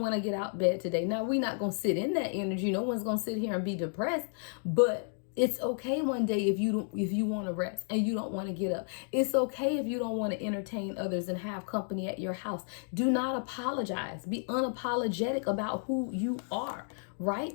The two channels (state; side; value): silent; right; 56 dB below the other